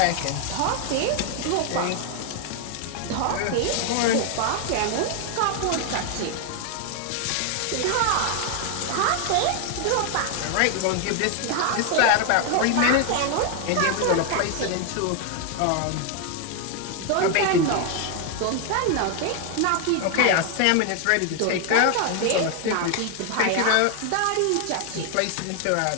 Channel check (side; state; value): both; different; correlation 0.00